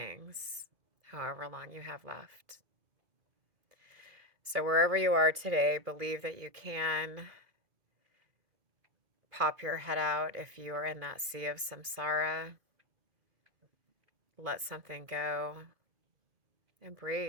however long you have left. So wherever you are today, believe that you can pop your head out if you are in that sea of samsara. Let something go and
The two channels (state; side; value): late; left; 2.2 ms